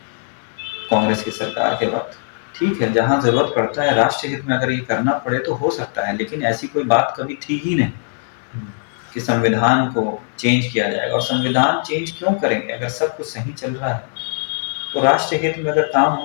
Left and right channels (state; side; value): silent; right; digital silence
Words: कांग्रेस की सरकार के वक्त। ठीक है, जहां जरूरत पड़ता है राष्ट्र हित में अगर ये करना पड़े तो हो सकता है, लेकिन ऐसी कोई बात कभी थी ही नहीं कि संविधान को चेंज किया जाएगा। और संविधान चेंज क्यों करेंगे अगर सब कुछ सही चल रहा है? तो राष्ट्र हित में अगर काम